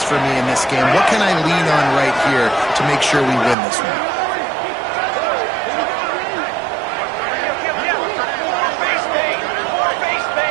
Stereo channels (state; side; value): drops out; left; at 3.6 s